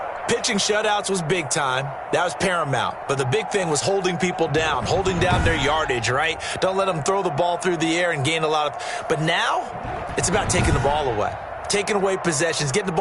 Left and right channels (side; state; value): both; identical; correlation 1.00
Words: pitching shutouts was big time. That was paramount. But the big thing was holding people down, holding down their yardage, right? Don't let them throw the ball through the air and gain a lot of... But now, it's about taking the ball away. Taking away possessions, getting the